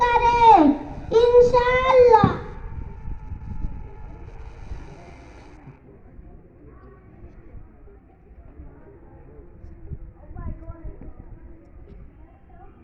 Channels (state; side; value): identical; both; correlation 1.00